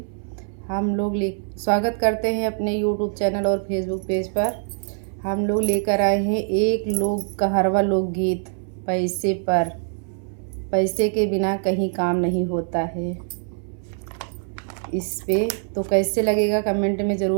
हम लोग स्वागत करते हैं अपने यूट्यूब चैनल और फेसबुक पेज पर। हम लोग लेकर आए हैं एक लोक कहरवा लोकगीत, पैसे पर। पैसे के बिना कहीं काम नहीं होता है। इस पे तो कैसे लगेगा कमेंट में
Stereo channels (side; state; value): left; silent; 63 dB below the other